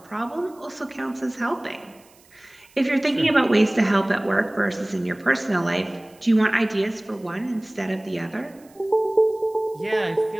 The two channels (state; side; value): noise; right; hiss, 29 dB below the sound